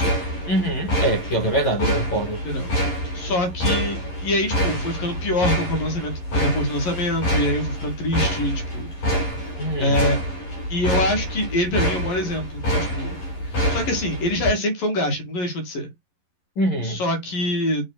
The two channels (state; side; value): late; right; 11 ms